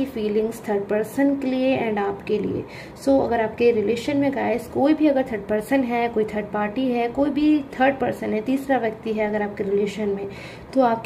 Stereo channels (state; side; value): identical; both; correlation 1.00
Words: फीलिंग्स थर्ड पर्सन के लिए एंड आपके लिए। अगर आपके रिलेशन में गाइस कोई भी अगर थर्ड पर्सन है, कोई थर्ड पार्टी है, कोई भी थर्ड पर्सन है, तीसरा व्यक्ति है अगर आपके रिलेशन में, तो